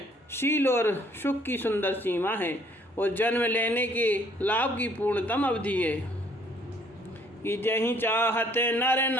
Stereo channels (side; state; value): both; normal; correlation 0.62